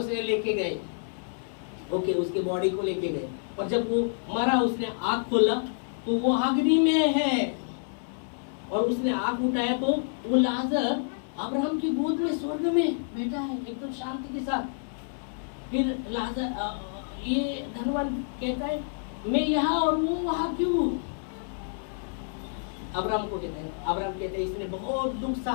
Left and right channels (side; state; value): right; silent; digital silence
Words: से लेके गए, ओके, उसकी बॉडी को लेके गए, और जब वो मरा उसने आँख खोला तो वो अग्नि में है, और उसने आँख उठाया तो वो लाजर अब्राहम की गोद में स्वर्ग में बैठा है एकदम शांति के साथ। फिर लाजर ये धनवान कहता है मैं यहाँ और वो वहाँ क्यों? अब्राहम कहता है इसने बहुत दुख